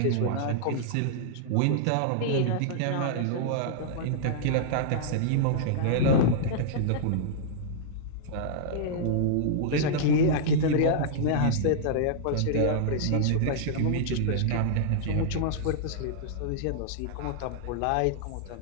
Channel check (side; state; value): both; different; correlation -0.01